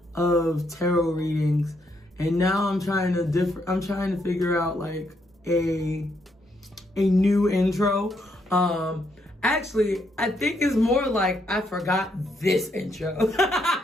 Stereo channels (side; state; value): both; normal; correlation 0.76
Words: of tarot readings, and now I'm trying to figure out like a new intro. Actually, I think it's more like I forgot this intro.